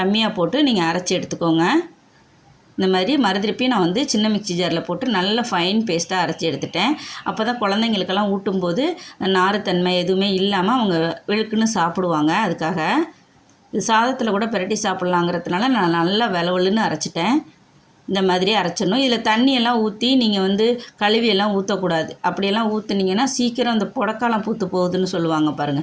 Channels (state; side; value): identical; both; correlation 1.00